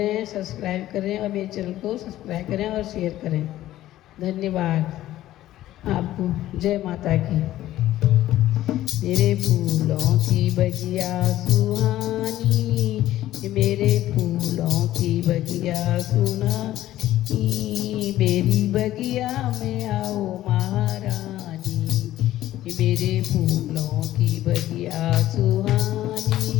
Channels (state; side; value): quieter; right; 14.2 dB